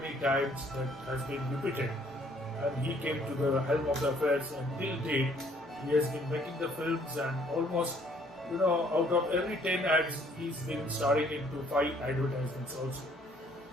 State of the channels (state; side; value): normal; both; correlation 0.62